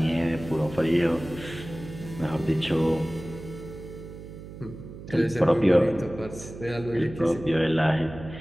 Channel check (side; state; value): right; noise; hum, 13 dB below the sound